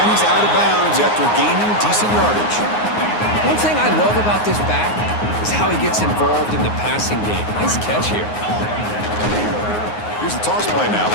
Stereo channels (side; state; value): right; late; 9.6 ms